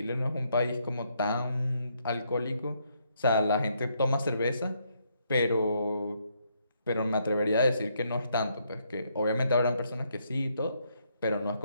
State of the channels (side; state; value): both; inverted; correlation -0.74